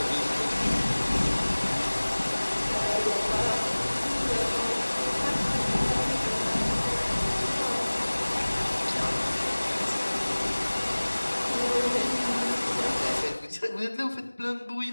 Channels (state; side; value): inverted; both; correlation -1.00